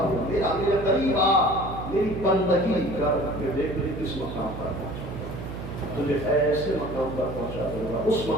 قریب آ، میری بندگی کر، کہ دیکھ مجھے کس مقام پر پہنچا، تجھے ایسے مقام پر پہنچا دوں گا، اس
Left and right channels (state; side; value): noise; right; hum, 9 dB below the sound